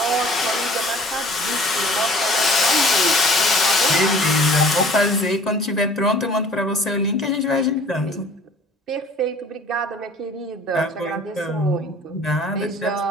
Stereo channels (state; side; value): normal; both; correlation 0.50